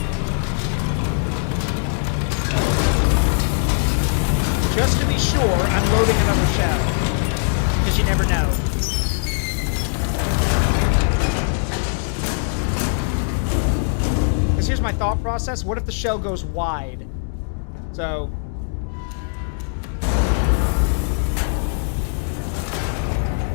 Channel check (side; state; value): right; silent; digital silence